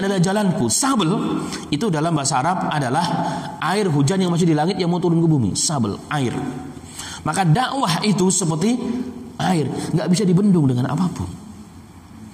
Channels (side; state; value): both; identical; correlation 1.00